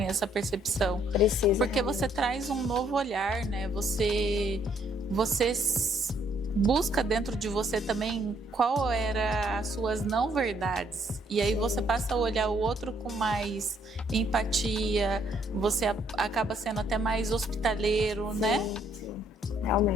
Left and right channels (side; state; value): both; normal; correlation 0.68